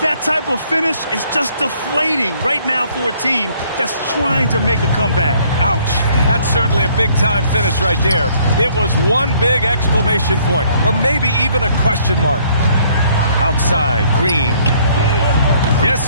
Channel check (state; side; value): inverted; both; correlation -0.62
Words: that type of finish is just deflating right now for a team that's trying to make a comeback. Ouch. That's certainly a big-time finish right there. It was one big exclamation point, or maybe even a question mark. Outside, Green. Yes,